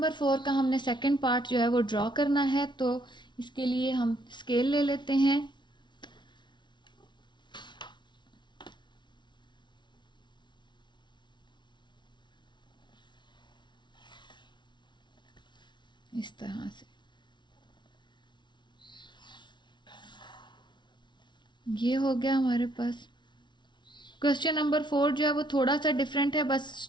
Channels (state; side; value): late; right; 0.22 ms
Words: 4 का हमने सेकंड पार्ट जो है वो ड्रॉ करना है, तो इसके लिए हम स्केल ले लेते हैं। इस तरह से ये हो गया हमारे पास। क्वेश्चन नंबर 4 जो है वो थोड़ा सा डिफरेंट है, बस